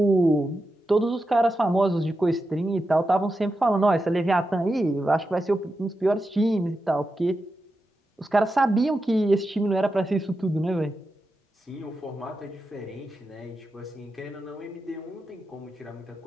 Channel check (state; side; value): normal; both; correlation 0.89